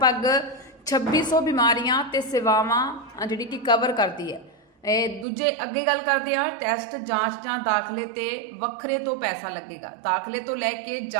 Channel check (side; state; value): left; drops out; at 5.2 s